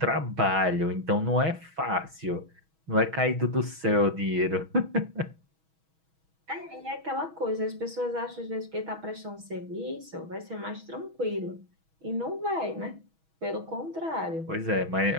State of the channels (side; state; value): left; late; 6.2 ms